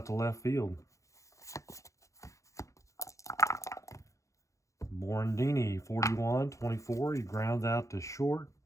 to left field. Morandini, 41-24. He grounds out to short.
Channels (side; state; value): right; late; 0.15 ms